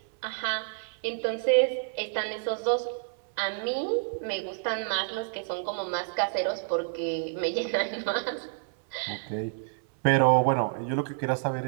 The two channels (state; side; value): silent; left; 59 dB below the other